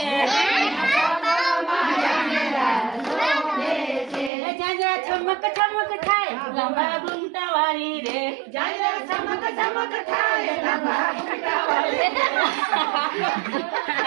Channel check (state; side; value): drops out; left; at 4.3 s